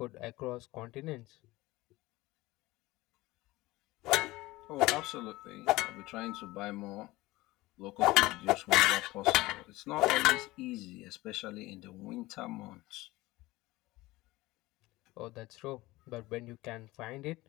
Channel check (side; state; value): right; quieter; 19.5 dB